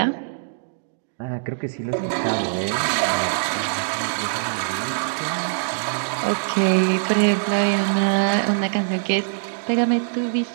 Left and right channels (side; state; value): left; silent; digital silence